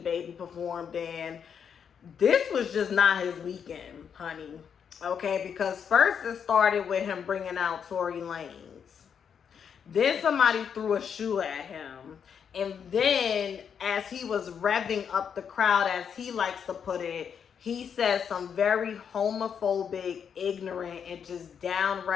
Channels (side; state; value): right; quieter; 7.4 dB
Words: performed, and this was just not his weekend, honey. Okay, because first it started with him bringing out Tory Lanez. Then somebody threw a shoe at him. And then as he was revving up the crowd, as he likes to put it, he said some very homophobic, ignorant, and just